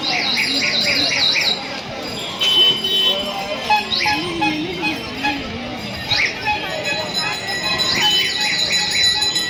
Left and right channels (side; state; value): both; identical; correlation 1.00